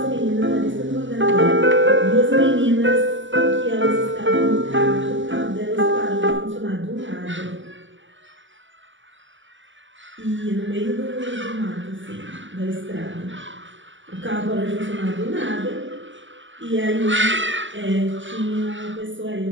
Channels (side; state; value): left; late; 0.55 ms